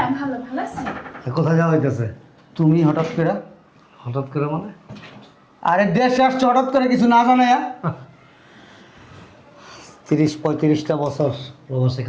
ভালো, ভালো আছি। কোথায় যাওয়া হইতেছে? তুমি হঠাৎ করে? হঠাৎ করে মানে? আরে দেশে আসছো হঠাৎ করে, কিছু না জানাই? 30-35টা বছর প্রবাসে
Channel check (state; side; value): identical; both; correlation 1.00